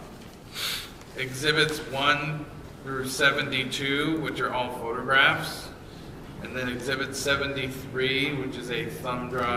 Exhibits 1 through 72, which are all photographs, and then Exhibit 73, which is a thumb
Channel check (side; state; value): both; identical; correlation 1.00